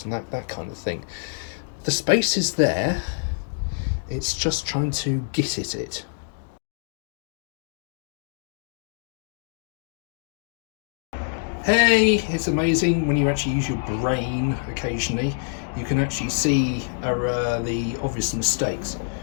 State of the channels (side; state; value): right; silent; 61 dB below the other